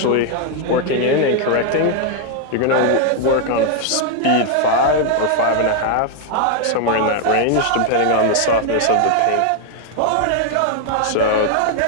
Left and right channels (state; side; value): different; both; correlation 0.00